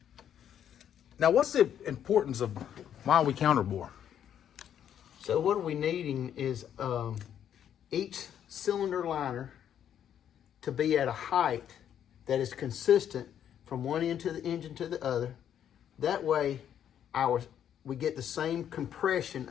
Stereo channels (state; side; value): quieter; right; 9.6 dB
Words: Now, what's the importance of why we counterbore? So what we're needing is each cylinder liner to be at a height that is consistent from one end of the engine to the other. That way, we get the same compression